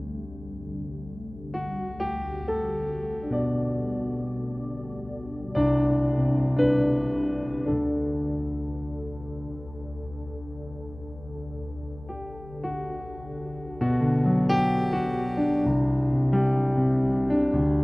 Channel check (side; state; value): left; noise; hum, 17 dB below the sound